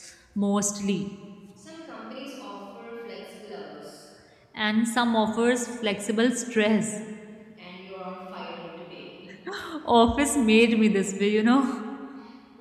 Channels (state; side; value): identical; both; correlation 1.00